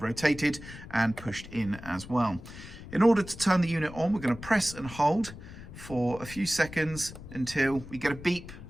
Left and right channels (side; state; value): left; noise; rumble, 14 dB below the sound